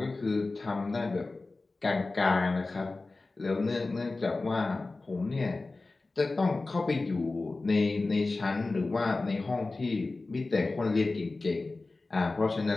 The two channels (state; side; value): quieter; right; 3.4 dB